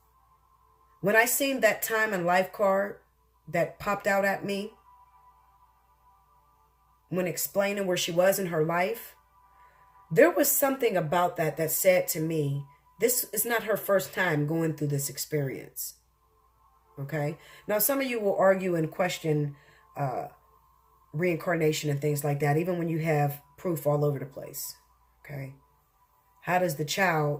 When I seen that time and life card that popped out at me when explaining where she was in her life, there was something about that that said to me, this is not her first time going through this experience. Okay? Now, some of you will argue and question reincarnation and things like that, even when you have proof all over the place. Okay? How does the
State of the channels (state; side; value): identical; both; correlation 1.00